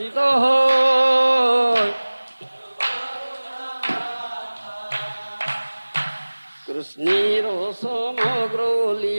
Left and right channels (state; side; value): inverted; both; correlation -1.00